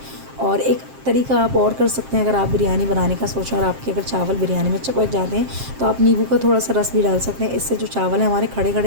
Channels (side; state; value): left; late; 7.6 ms